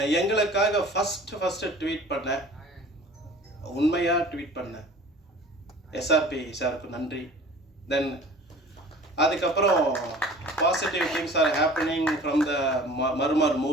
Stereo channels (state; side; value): normal; both; correlation 0.45